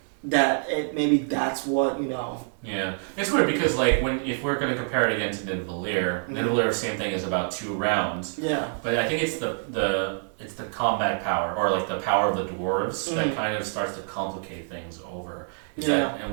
That maybe that's what Yeah, it's weird because like if we're going to compare it again to Nidavellir, same thing, is about 2 rounds. Yeah. But I think it's the combat power, or like the power of the dwarves, that kind of starts to complicate things over.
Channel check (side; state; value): left; silent; 61 dB below the other